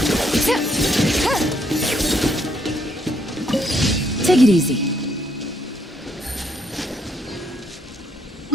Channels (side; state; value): both; normal; correlation 0.72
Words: Take it easy.